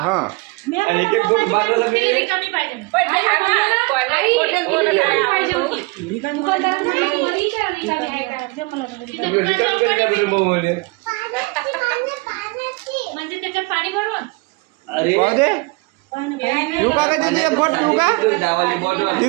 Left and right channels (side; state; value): left; quieter; 26.3 dB